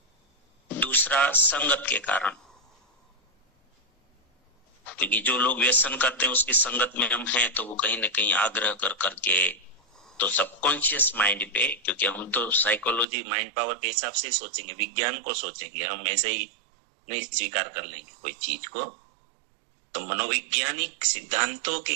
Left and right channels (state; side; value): drops out; left; at 13.1 s